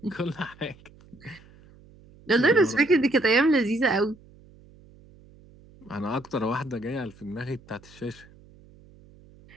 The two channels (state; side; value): noise; right; hum, 25 dB below the sound